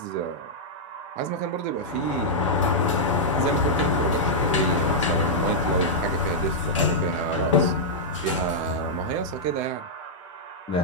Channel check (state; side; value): normal; both; correlation -0.08